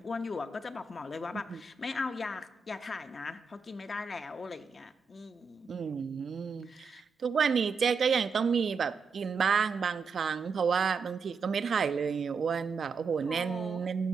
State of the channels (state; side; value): quieter; left; 4.9 dB